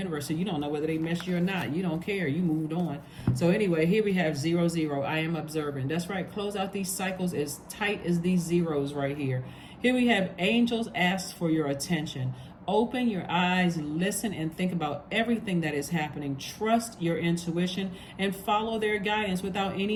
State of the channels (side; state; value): both; identical; correlation 1.00